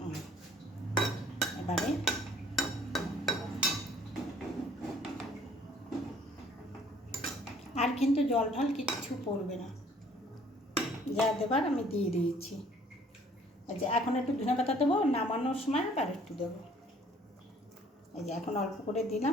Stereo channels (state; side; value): normal; both; correlation 0.58